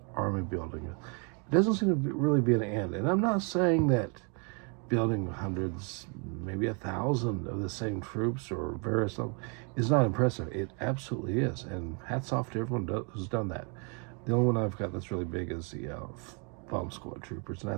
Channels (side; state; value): left; quieter; 36.0 dB